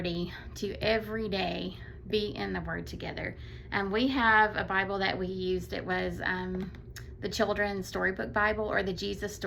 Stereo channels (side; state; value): both; identical; correlation 1.00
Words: to every day be in the Word together. We have a Bible that we used. It was the Children's Storybook Bible, or the Jesus